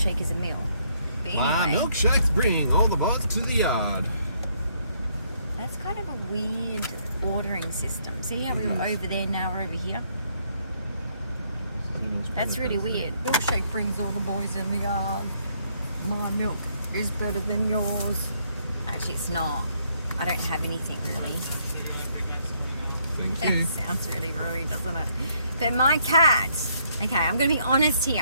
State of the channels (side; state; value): both; inverted; correlation -0.70